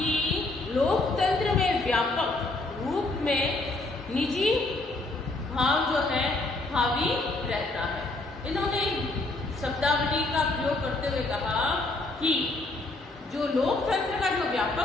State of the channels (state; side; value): quieter; right; 3.0 dB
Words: लोकतंत्र में व्यापक रूप में निजी भाव जो है हावी रहता है। इन्होंने शब्दावली का प्रयोग करते हुए कहा कि जो लोकतंत्र का जो